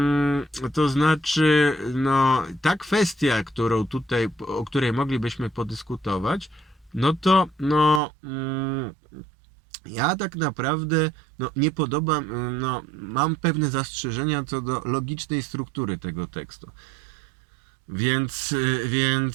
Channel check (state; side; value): drops out; left; at 8.0 s